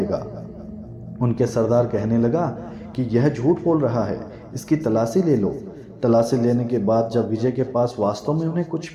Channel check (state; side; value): identical; both; correlation 1.00